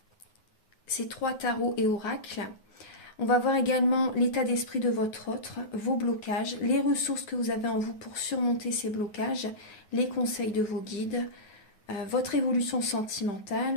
ces 3 tarots et oracles. On va voir également l'état d'esprit de votre autre, vos blocages, les ressources que vous avez en vous pour surmonter ces blocages, les conseils de vos guides, votre évolution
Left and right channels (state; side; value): late; right; 9.5 ms